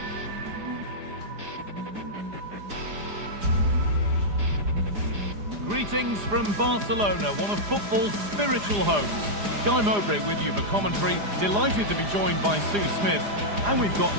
Greetings from Barcelona, one of football's spiritual homes. Guy Mowbray with you for commentary. Delighted to be joined by Sue Smith. And we've got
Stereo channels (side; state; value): left; late; 4.9 ms